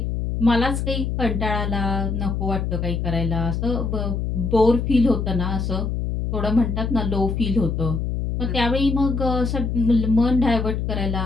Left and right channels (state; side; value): noise; left; hum, 1 dB below the sound